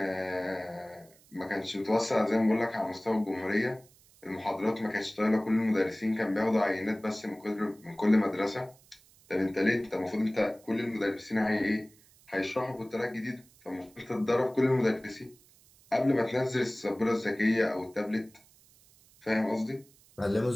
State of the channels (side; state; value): right; noise; hiss, 28 dB below the sound